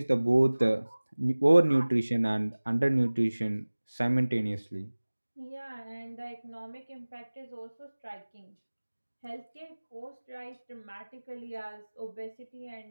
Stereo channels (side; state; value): both; inverted; correlation -1.00